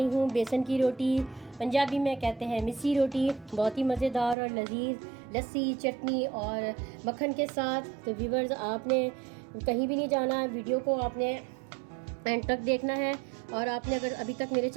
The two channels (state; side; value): drops out; left; at 4.4 s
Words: हूँ बेसन की रोटी। पंजाबी में कहते हैं मिस्सी रोटी। बहुत ही मज़ेदार और लजीज लस्सी, चटनी और मक्खन के साथ। तो व्यूवर्स, आपने कहीं भी नहीं जाना, वीडियो को आपने एंड तक देखना है। और आपने अगर अभी तक मेरे